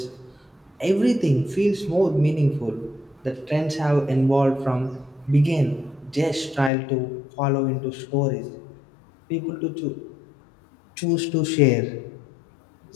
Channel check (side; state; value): right; drops out; at 6.7 s